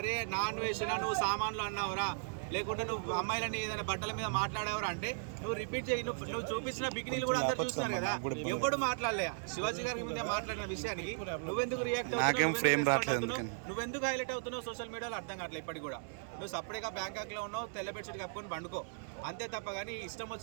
నాన్ వేషనా నువ్వు సామాన్లు అన్నావురా, లేకుంటే నువ్వు అమ్మాయిలని ఏదైనా బట్టల మీద మాట్లాడావరా అంటే నువ్వు రిపీట్ చేయి. నువ్వు చూపించిన బికినీలు కూడా అందరు చూస్తున్నారు కదా, ఎవడు మాట్లాడలే శివాజీ గారి మీద మాట్లాడిన విషయానికి నువ్వెందుకు రియాక్ట్ అవుతున్నావు, నువ్వెందుకు హైలైట్ అవుతున్నావు సోషల్ మీడియాలో అర్థం కావట్లేదు. ఇప్పటికి కూడా నువ్వు సపరేట్గా బ్యాంకాక్లో ఉన్నావు, తెల్ల బెడ్షీట్ కప్పుకొని పండుకో అంతే తప్ప. కానీ ఇష్టం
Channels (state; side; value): silent; left; 53 dB below the other